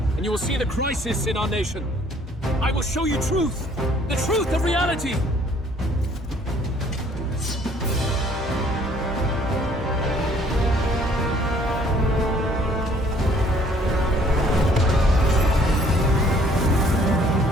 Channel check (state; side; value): normal; both; correlation 0.60